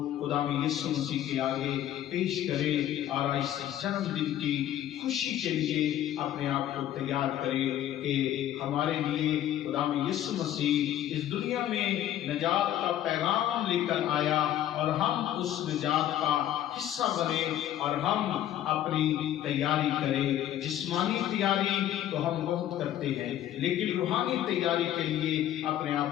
खुदावंद यीशु मसीह के आगे पेश करें और इस जन्मदिन की खुशी के लिए अपने आप को तैयार करें कि हमारे लिए खुदावंद यीशु मसीह इस दुनिया में निजात का पैगाम लेकर आया और हम उस निजात का हिस्सा बने और हम अपनी तैयारी करें। जिस्मानी तैयारी तो हम बहुत करते हैं, लेकिन रूहानी तैयारी के लिए अपने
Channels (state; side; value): quieter; right; 11.9 dB